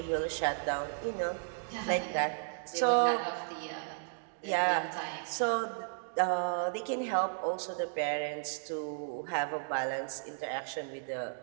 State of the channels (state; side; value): silent; left; digital silence